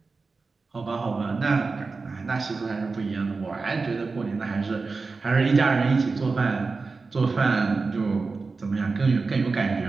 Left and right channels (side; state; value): left; quieter; 4.2 dB